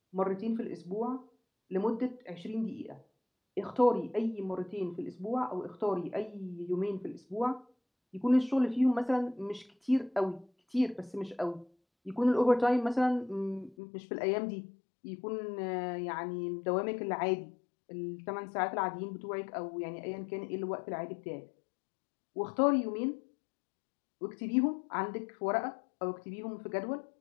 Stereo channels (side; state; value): right; drops out; at 13.8 s